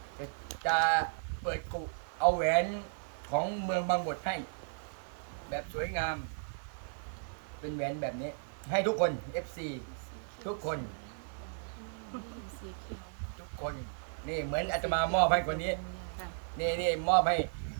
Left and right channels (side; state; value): left; silent; 55 dB below the other